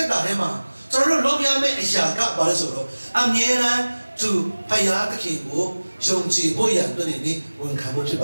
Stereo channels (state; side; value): inverted; both; correlation -1.00